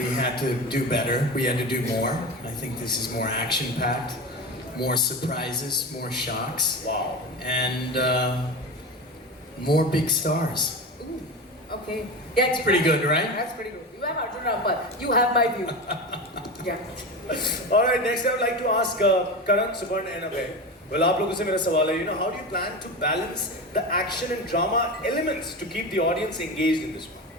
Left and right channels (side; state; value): both; normal; correlation 0.25